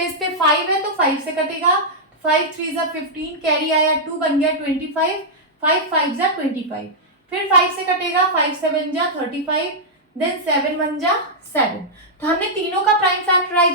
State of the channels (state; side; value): normal; both; correlation -0.08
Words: पे 5 है तो 5 से कटेगा, 5 3 जा 15, कैरी आया 2, बन गया 25, 5 5 जा 25, फिर 5 से कटेगा, 5 7 जा 35, देन 7 1 जा 7। तो हमने तीनों का प्राइम